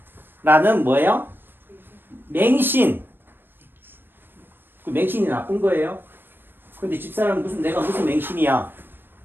라는 뭐예요? 맹신. 그 맹신이 나쁜 거예요. 근데 집사람은 내가 무슨 맹신이야?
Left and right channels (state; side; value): late; left; 0.097 ms